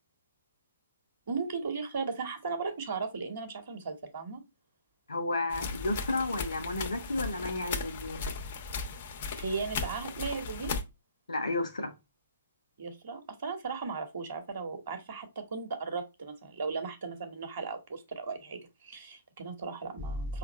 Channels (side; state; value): both; inverted; correlation -0.58